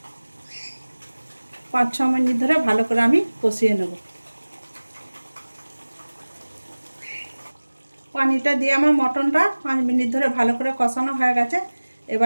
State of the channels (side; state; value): both; inverted; correlation -1.00